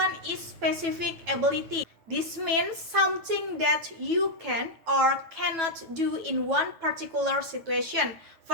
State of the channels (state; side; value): late; left; 9.1 ms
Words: is specific ability. This means something that you can or cannot do in one particular situation.